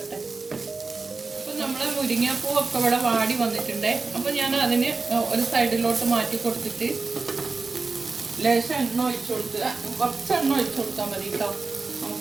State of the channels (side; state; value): left; quieter; 4.0 dB